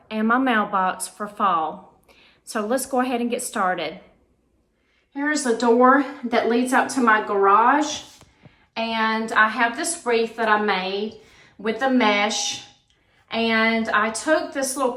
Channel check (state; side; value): identical; both; correlation 1.00